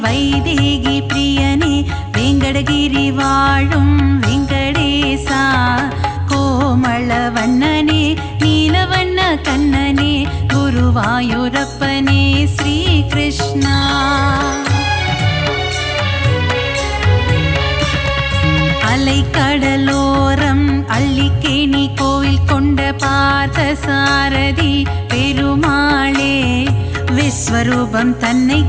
வைதேகி பிரியனே வெங்கடகிரி வாழும் வெங்கடேசா கோமளவண்ணனே நீலவண்ண கண்ணனே குருவாயூரப்பனே ஸ்ரீ கிருஷ்ணா அலைக்கடலோரம் அள்ளிக்கேணி கோவில் கொண்ட பார்த்த சாரதி பெருமாளே விஸ்வரூபம் தன்னை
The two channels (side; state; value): both; identical; correlation 1.00